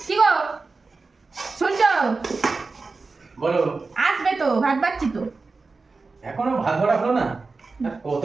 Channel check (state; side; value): quieter; left; 4.0 dB